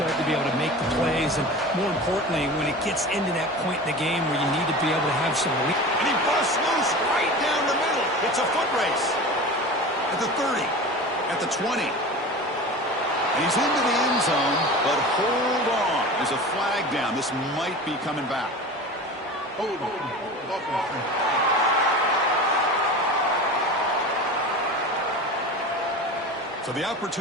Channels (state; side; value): normal; both; correlation 0.33